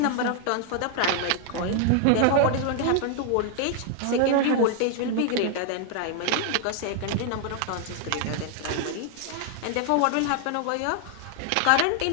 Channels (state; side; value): different; both; correlation 0.00